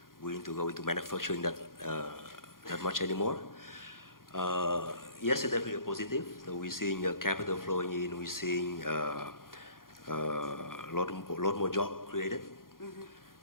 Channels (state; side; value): late; right; 0.91 ms